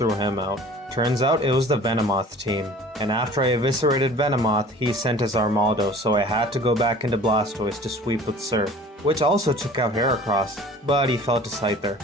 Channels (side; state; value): both; normal; correlation 0.46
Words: him out. Turns out it was the Venomoth team, and after I eviscerated Venomoth, he sent his Armaldo, so I had to go back into Blastoise to sweep with Surf, which also took out Heracross, but he fell to Scyther.